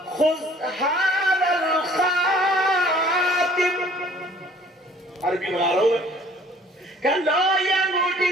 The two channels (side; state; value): both; normal; correlation 0.54